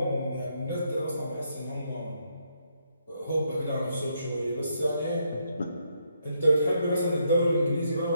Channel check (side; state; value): both; inverted; correlation -0.76